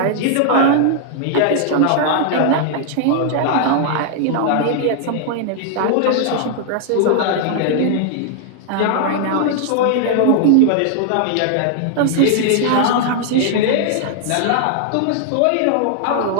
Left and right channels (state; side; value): different; both; correlation 0.00